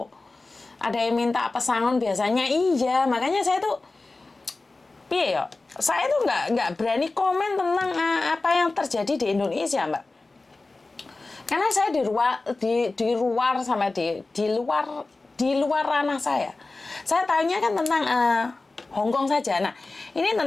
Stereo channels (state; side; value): quieter; right; 3.4 dB